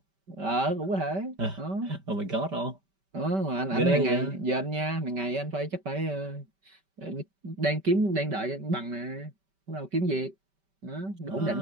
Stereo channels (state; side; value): late; left; 5.1 ms